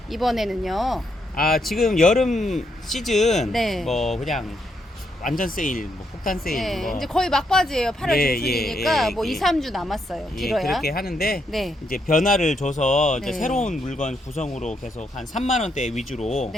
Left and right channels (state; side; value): normal; both; correlation 0.77